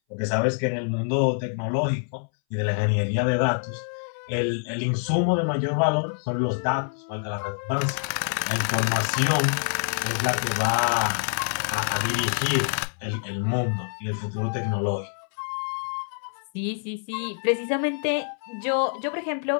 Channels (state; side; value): silent; right; 61 dB below the other